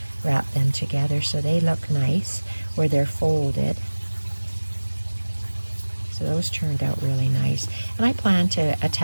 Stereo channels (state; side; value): inverted; both; correlation -1.00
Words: wrapped them together so they look nice where they're folded. So those turned out really nice. And I plan to